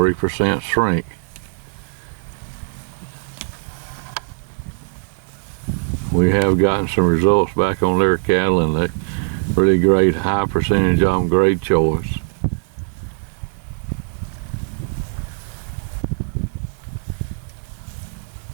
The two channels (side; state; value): left; silent; digital silence